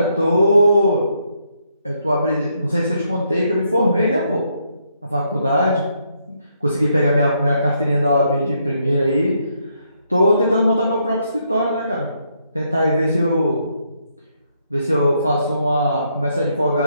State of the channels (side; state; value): both; inverted; correlation -0.75